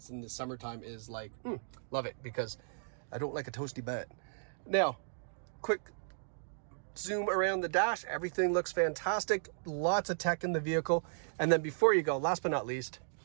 in the summertime is like, love it, because I don't like a toasty butt. Now, quick zoom around the dash. Everything looks fantastic. Lots of tech in the vehicle. And then before you go, last but not least,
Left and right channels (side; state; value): left; silent; digital silence